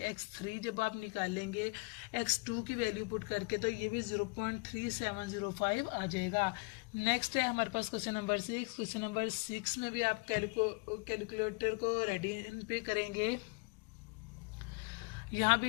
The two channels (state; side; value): quieter; right; 29.1 dB